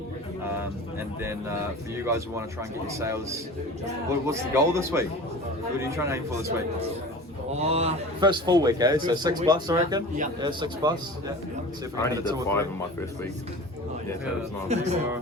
And then for you guys who want to try and get your sales, what's the goal this week? What are you trying to aim for this week? First full week, eh? So 6+, I reckon? Yeah. Yeah, 6+. Yeah. See if I can only hit did 2 or 5 3. in my first week. Yeah, so it's not.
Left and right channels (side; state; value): both; normal; correlation 0.37